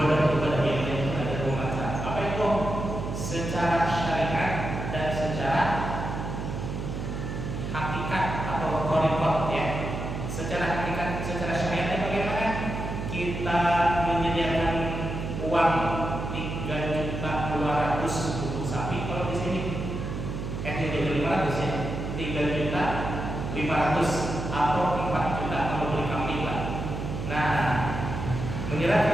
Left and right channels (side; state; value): right; noise; hum, 5 dB below the sound